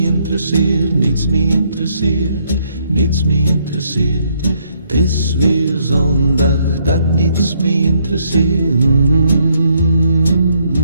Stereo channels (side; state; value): both; inverted; correlation -0.71